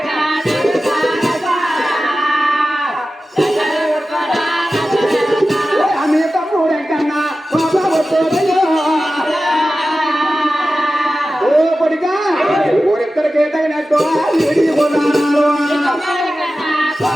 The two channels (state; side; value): normal; both; correlation 0.94